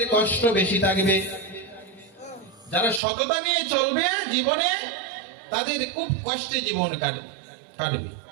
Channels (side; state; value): left; drops out; at 3.0 s